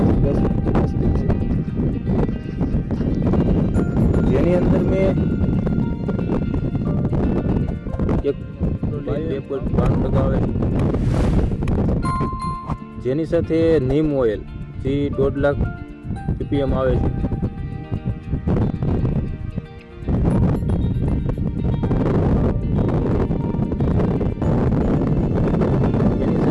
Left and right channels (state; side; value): identical; both; correlation 1.00